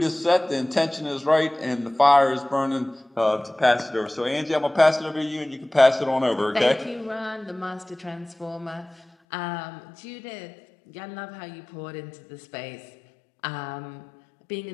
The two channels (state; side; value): drops out; right; at 9.1 s